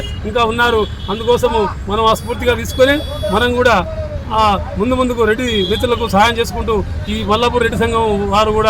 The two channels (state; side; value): identical; both; correlation 1.00